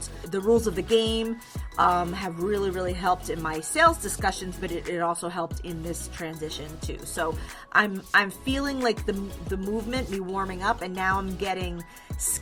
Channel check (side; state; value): both; identical; correlation 1.00